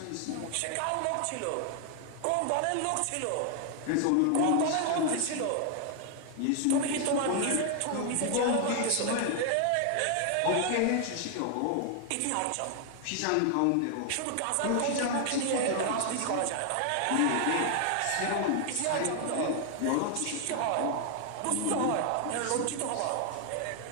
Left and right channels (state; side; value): different; both; correlation 0.00